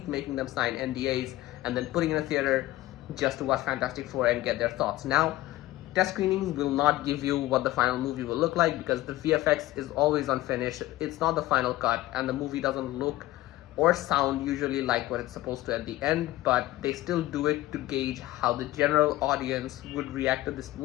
making them sign NDAs, and then putting in a theater just to watch Fantastic Four and get their thoughts. Now, test screenings will not give you what the final movie will look like because the VFX is always unfinished. It's not the final cut, and the movie doesn't look or sound usually like what it's supposed to at the end, but they still do it to gauge how the general audience would react to this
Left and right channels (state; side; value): quieter; right; 16.7 dB